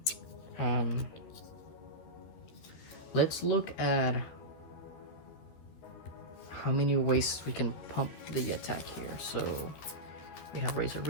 Let's look at how many ways we can pump the attack here. So we have Razor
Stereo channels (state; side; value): late; right; 13 ms